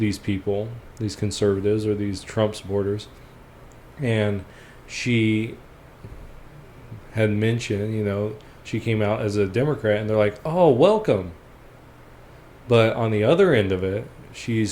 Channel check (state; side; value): identical; both; correlation 1.00